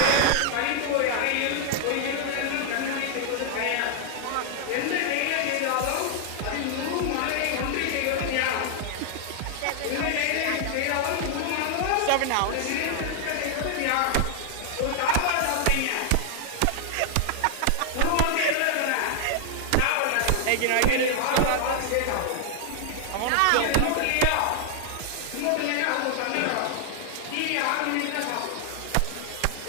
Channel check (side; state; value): both; different; correlation 0.00